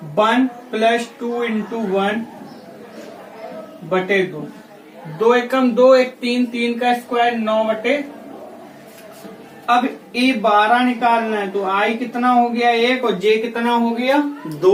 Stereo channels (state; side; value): identical; both; correlation 1.00